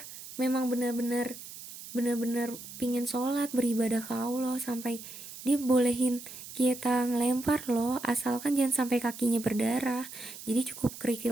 memang benar-benar pingin sholat, beribadah ke Allah, sampai dia bolehin kita ngelempar loh, asalkan jangan sampai kakinya berdarah, jadi cukup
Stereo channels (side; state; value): right; noise; hiss, 13 dB below the sound